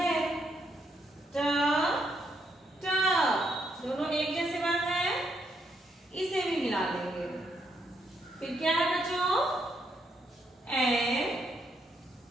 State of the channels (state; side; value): normal; both; correlation 0.76